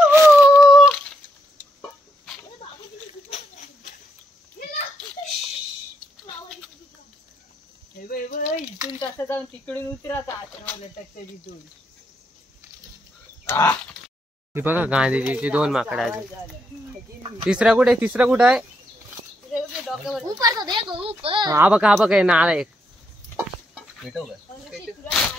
इथून कसं जाऊन तिकडून उतरायचा. हे बघा गांधीजीची 2 माकडं आहेत. तिसरा कुठे आहे. हा बघा नाला एक.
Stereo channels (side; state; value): both; normal; correlation 0.78